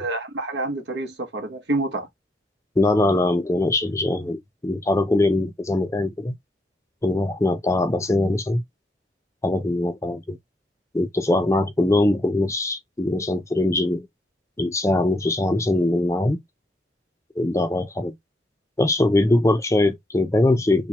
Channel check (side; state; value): both; normal; correlation 0.76